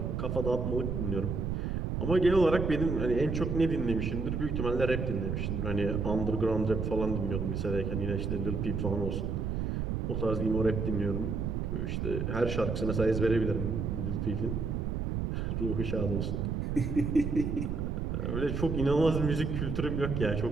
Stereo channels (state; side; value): noise; right; rumble, 1 dB below the sound